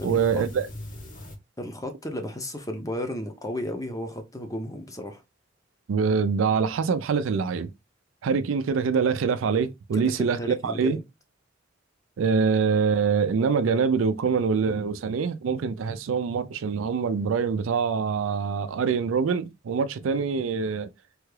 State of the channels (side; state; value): left; quieter; 5.0 dB